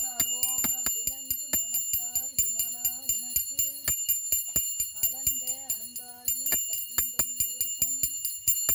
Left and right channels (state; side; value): identical; both; correlation 1.00